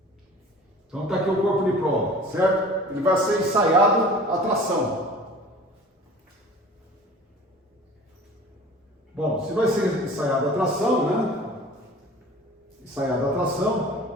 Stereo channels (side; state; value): both; normal; correlation 0.44